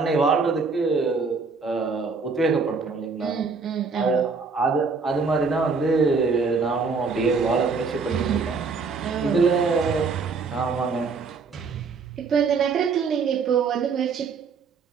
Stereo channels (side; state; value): left; quieter; 4.8 dB